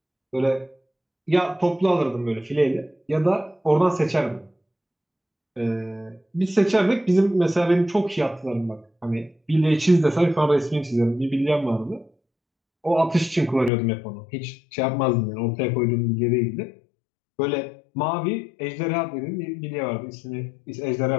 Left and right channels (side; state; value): right; drops out; at 13.7 s